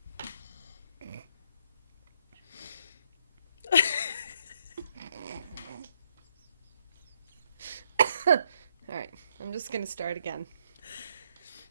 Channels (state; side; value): inverted; both; correlation -0.74